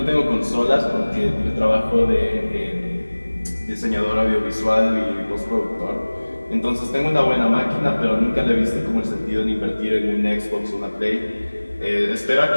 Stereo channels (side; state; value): both; inverted; correlation -1.00